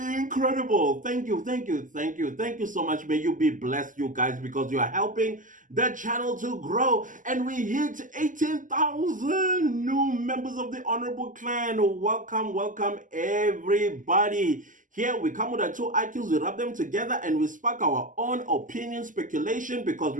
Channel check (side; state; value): left; late; 0.38 ms